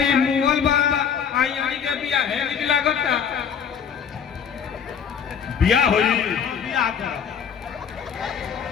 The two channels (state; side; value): quieter; right; 7.4 dB